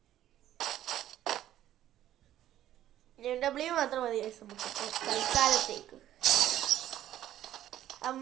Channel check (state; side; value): quieter; left; 12.5 dB